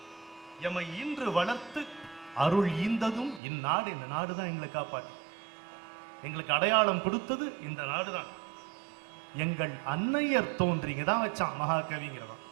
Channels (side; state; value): left; drops out; at 3.4 s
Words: எமை இன்று வளர்த்து அருள் ஈந்ததும் இந்நாடு. இந்த நாடு தான் எங்களை காப்பாற்றி எங்களுக்கு அடையாளம் கொடுத்தது இந்த நாடு தான். எங்கள் அன்னையர் தோன்றிங்க தான் வச்சான் மகாகவிங்கிறவன்.